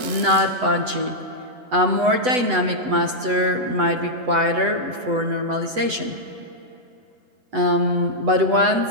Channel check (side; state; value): left; late; 8.0 ms